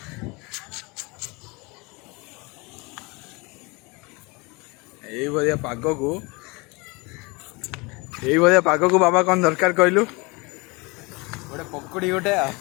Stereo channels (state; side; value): quieter; right; 26.8 dB